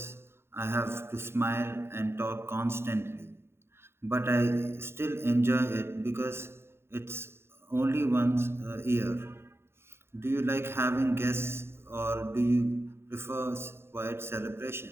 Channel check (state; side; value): late; left; 0.12 ms